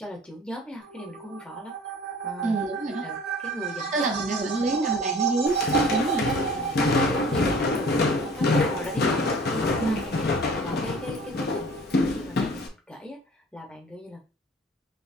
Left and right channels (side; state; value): both; normal; correlation 0.47